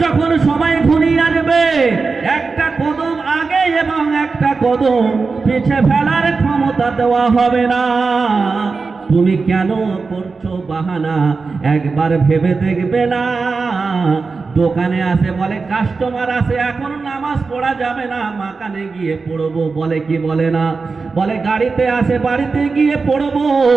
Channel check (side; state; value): left; quieter; 4.4 dB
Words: যখন সময় ঘনিয়ে আসবে, একটা কদম আগে এবং একটা কদম পিছে ফেলার ক্ষমতা দেওয়া হবে না। তুমি কেন করছো বাহানা? একবার ভেবে দেখবে না? দোকানে আসে বলে কাস্টমার আসে, এখন নামাজ পড়া যাবে না, মাকানে গিয়ে পড়বো, বলে কি বলে না? বলে গাড়িতে আসে, বাড়িতে গিয়ে পড়বো।